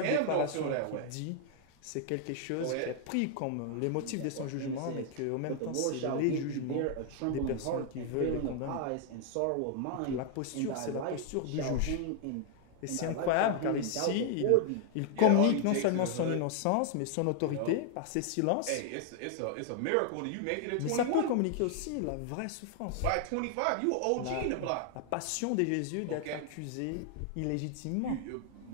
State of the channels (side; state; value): both; different; correlation 0.00